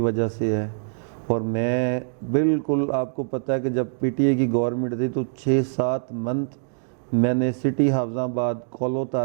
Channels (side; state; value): left; silent; digital silence